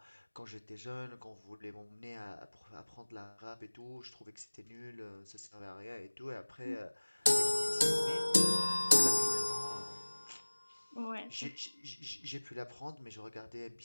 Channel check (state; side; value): inverted; both; correlation -1.00